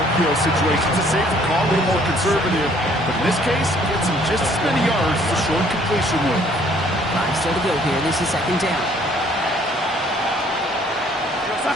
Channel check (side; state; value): both; normal; correlation 0.61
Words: situation. It's a safer call, a little more conservative. But in this case, gets him just as many yards as a short completion would. 5 still to go here. This is 2nd down.